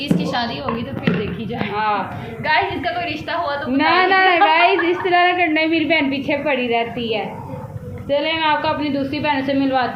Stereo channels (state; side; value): identical; both; correlation 1.00